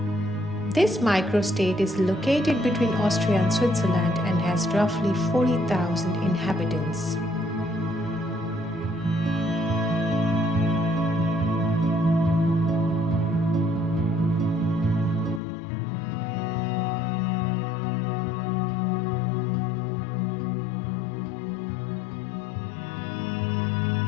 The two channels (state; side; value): drops out; right; at 15.4 s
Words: This microstate is located between Austria and Switzerland and has roughly 40,000 inhabitants.